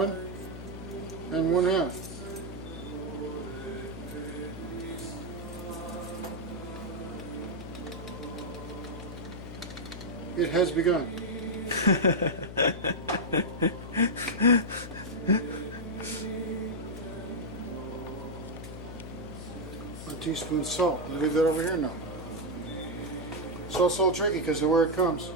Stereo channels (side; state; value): left; noise; hum, 10 dB below the sound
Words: and 1/2. It has begun. 1 teaspoon salt. I'll leave that over here now. Salt's so tricky because of where it comes.